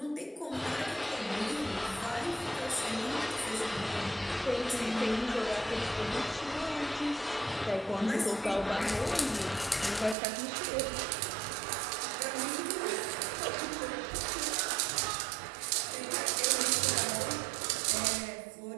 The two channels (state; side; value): drops out; left; at 10.2 s